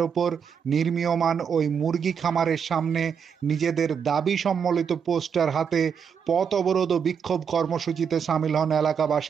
ওপর নির্মীয়মাণ ওই মুরগি খামারের সামনে নিজেদের দাবি সম্বলিত পোস্টার হাতে পথ অবরোধ ও বিক্ষোভ কর্মসূচিতে সামিল হন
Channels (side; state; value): left; quieter; 7.0 dB